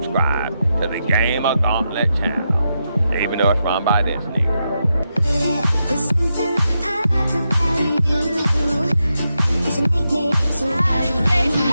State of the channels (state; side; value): inverted; both; correlation -0.86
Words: to the GamerGauntlet channel, even though it's run by this nigga. There's something I like about you. Cause you make me so happy.